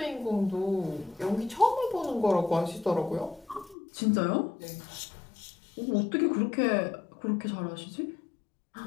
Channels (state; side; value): drops out; right; at 3.8 s